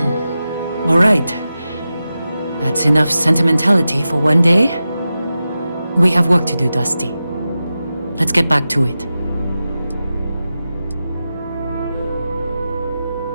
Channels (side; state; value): both; inverted; correlation -0.92